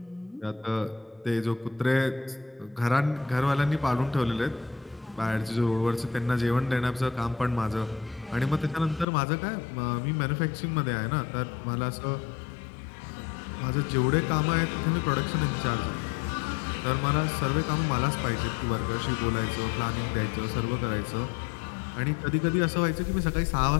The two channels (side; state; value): right; drops out; at 9.1 s